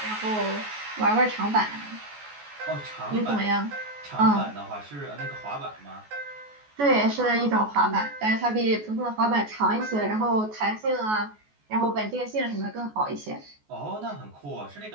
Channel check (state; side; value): late; left; 14 ms